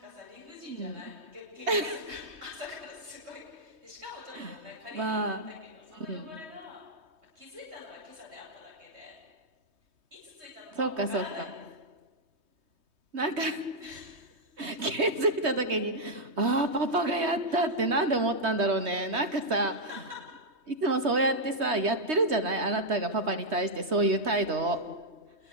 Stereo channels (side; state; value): left; late; 3.2 ms